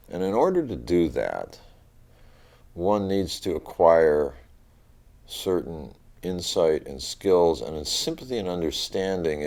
And in order to do that, one needs to acquire certain insight and skills and sympathy and understanding,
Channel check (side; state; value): both; identical; correlation 1.00